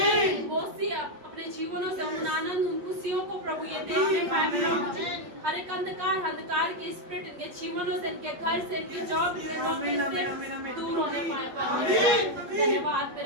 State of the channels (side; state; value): left; late; 8.3 ms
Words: बोसी अपने जीवनों से उन आनंद, उन खुशियों को प्रभु ये देखने पाए प्रभु। हर एक अंधकार के स्पिरिट इनके जीवनों से, इनके घर से, इनके जॉब, इनके नौकरी से दूर होने पाए परमेश्वर। धन्यवाद